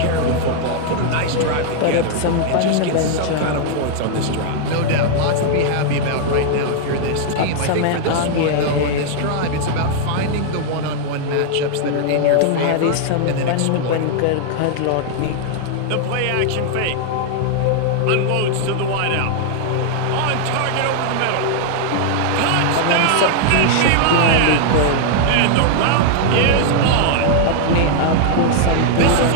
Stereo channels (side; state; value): both; different; correlation 0.00